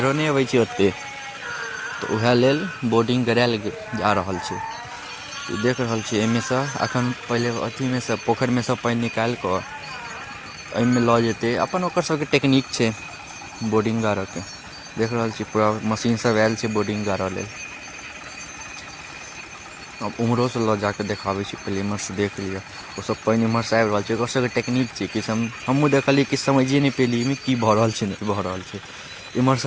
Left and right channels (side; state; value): both; identical; correlation 1.00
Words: नहि अबै छै ओतेक। तऽ वएह लेल बोर्डिंग करायल जा रहल छै। देख रहल छी एहिमे सँ एखन पहिले अथीमे सँ पोखरिमे सँ पानि निकालि कऽ एहिमे लऽ जेतै। अपन ओकर सबके टेकनीक छै बोर्डिंग गाड़ऽके। देख रहल छी पूरा मशीन सब आयल छै बोर्डिंग गाड़ऽ लेल। अब उम्हरोसँ लऽ जाकऽ देखाबै छी, पहिले इम्हरसँ देख लिअ। ओसब पानि इम्हरसँ आबि रहल छै, ओकर सबके टेकनीक छै। किछु हमहूँ देखलियै, किछु समझिए नहि पेलियै एहिमे की भऽ रहल छै नहि भऽ रहल छै।